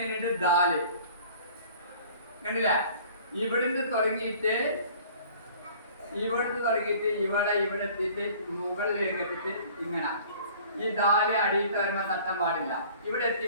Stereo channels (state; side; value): inverted; both; correlation -0.49